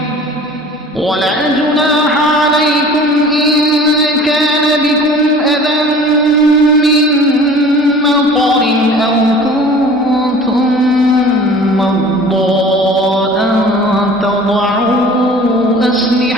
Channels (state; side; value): normal; both; correlation 0.45